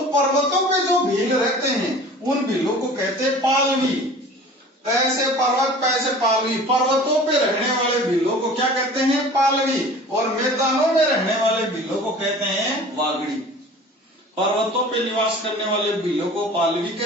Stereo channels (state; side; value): normal; both; correlation 0.43